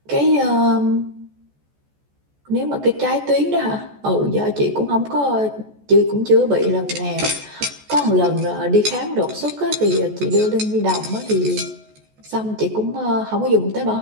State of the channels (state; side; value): late; left; 14 ms